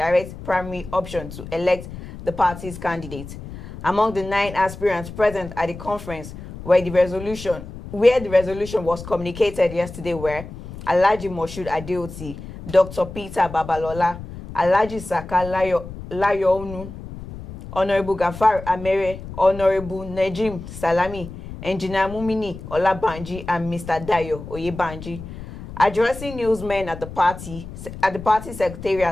primary option to elect the party's candidate. Among the 9 aspirants present at the conference where the resolution was communicated yesterday were Alhaji Moshood Adeoti, Dr. Peter Babalola, Alhaji Saka Layoonu, Honorable Gafar Amere, Honorable Najim Salami, Engineer Mumini Olabanji, and Mr. Dayo Oyebanji. Addressing newsmen at the party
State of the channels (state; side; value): noise; left; rumble, 12 dB below the sound